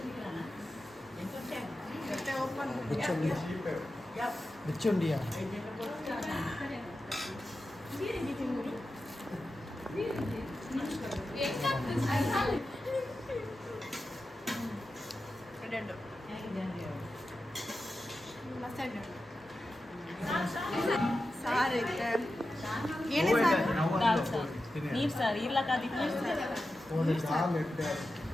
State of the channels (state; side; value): normal; both; correlation 0.92